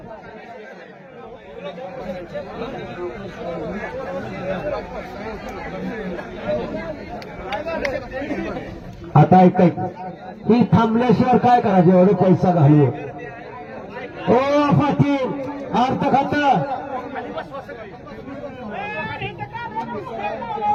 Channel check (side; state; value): both; identical; correlation 1.00